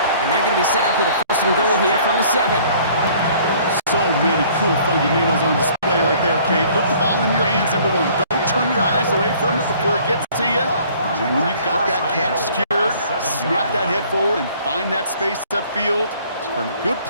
And they're going to be set up with a first and goal here from the 7. So many cool fundamentals on display right there, Kate. Put the ball in your hands, number one. Don't turn your eyes away from it before it gets to you. And when you've got that catch secured, snap that head forward and find that space upfield. Turn a good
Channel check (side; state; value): both; inverted; correlation -0.55